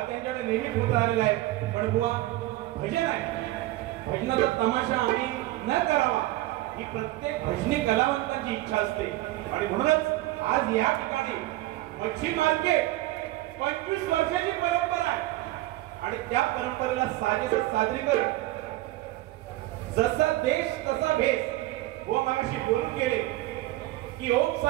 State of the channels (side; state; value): left; quieter; 17.1 dB